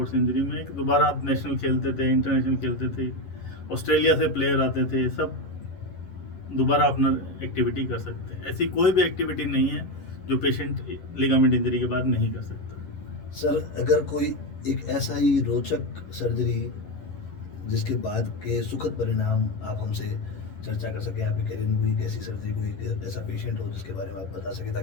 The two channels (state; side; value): late; right; 11 ms